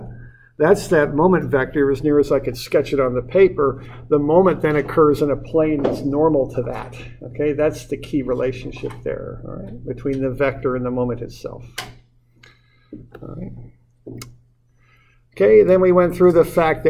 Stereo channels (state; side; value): identical; both; correlation 1.00